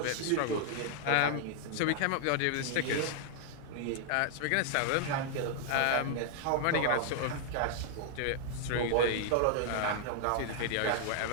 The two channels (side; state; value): both; different; correlation 0.00